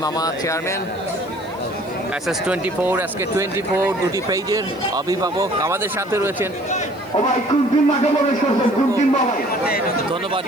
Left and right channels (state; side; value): noise; right; hiss, 27 dB below the sound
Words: মামা চেয়ারম্যান, SS24, SK24 দুটি পেজের অভিভাবক আমাদের সাথে রয়েছেন। ধন্যবাদ